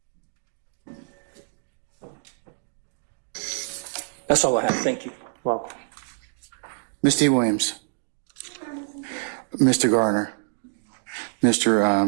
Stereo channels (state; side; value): silent; left; digital silence